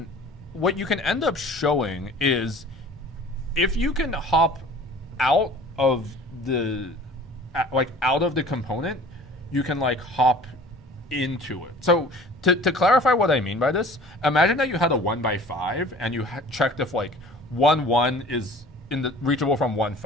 end up showing is if you can hop out of the component, you can like hop into it. So to clarify what I mean by this, imagine that you had a 1 by 5 and you checked if like 1 is reachable from 1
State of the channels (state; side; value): normal; both; correlation 0.46